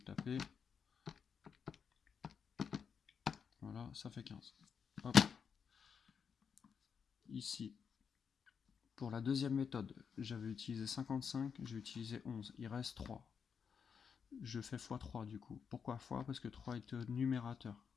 Voilà, ça fait 15. Hop. Ici, pour la deuxième méthode, j'avais utilisé 55, j'ai utilisé 11, il reste 3. je fais x3 du coup. Pourquoi x? Parce que 3 est numérateur.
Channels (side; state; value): right; quieter; 6.6 dB